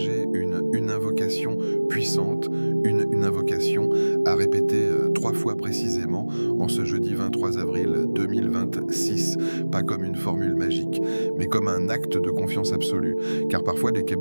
une invocation puissante, une invocation à répéter 3 fois précisément en ce jeudi 23 avril 2026. Pas comme une formule magique, mais comme un acte de confiance absolue. Car parfois,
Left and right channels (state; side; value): inverted; both; correlation -1.00